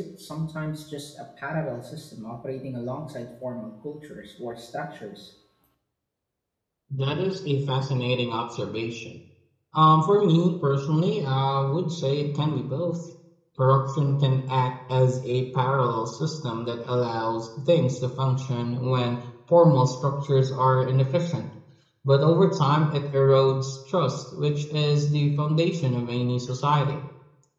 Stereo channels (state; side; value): identical; both; correlation 1.00